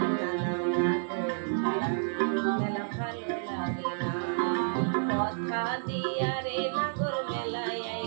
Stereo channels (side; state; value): left; silent; 58 dB below the other